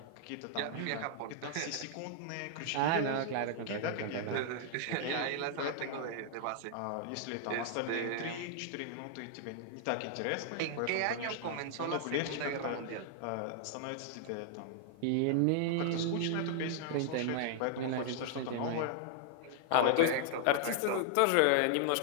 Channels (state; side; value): different; both; correlation -0.01